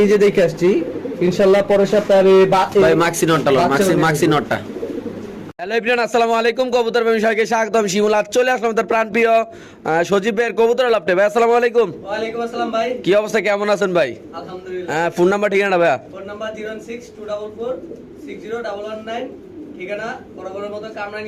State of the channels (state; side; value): identical; both; correlation 1.00